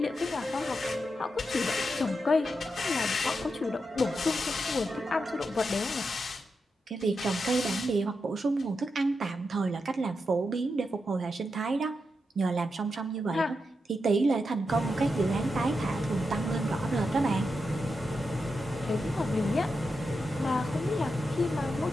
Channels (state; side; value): normal; both; correlation 0.86